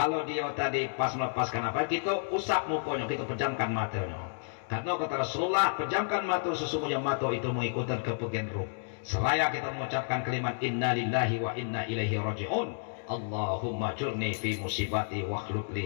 dia tadi pas melepaskan napas, kita usap mukanya, kita pejamkan matanya. Karena kata Rasulullah, pejamkan mata, sesungguhnya mata itu mengikuti kepergian ruh. Seraya kita mengucapkan kalimat inna lillahi wa inna ilaihi raji'un. Allahumma jurni fi musibati wa akhluk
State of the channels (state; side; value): silent; right; digital silence